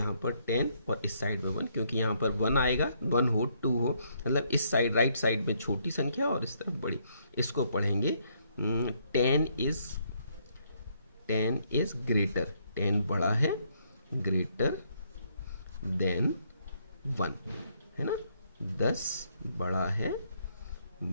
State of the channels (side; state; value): both; inverted; correlation -0.71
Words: पर 10 और इस साइड में 1, क्योंकि यहाँ पर 1 आएगा, 1 हो 2 हो, मतलब इस साइड राइट साइड में छोटी संख्या और इस तरफ बड़ी। इसको पढ़ेंगे 10 इज ग्रेटर, 10 बड़ा है, ग्रेटर देन 1, है ना। 10 बड़ा है